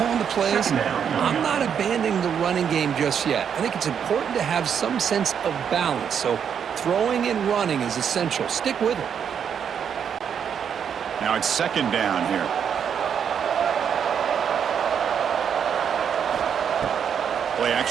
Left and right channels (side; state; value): left; quieter; 7.8 dB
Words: the plays, I'm not abandoning the running game just yet. I think it's important to have some sense of balance. So throwing and running is essential. Stick with it. Now it's 2nd down here. Play